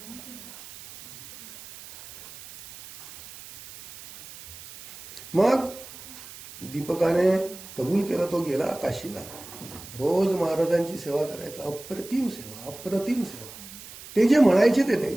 मग दीपकाने कबूल केलं, तो गेला काशीला. रोज महाराजांची सेवा करायचा. अप्रतिम सेवा, अप्रतिम सेवा. ते जे म्हणायचे ते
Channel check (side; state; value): right; noise; hiss, 16 dB below the sound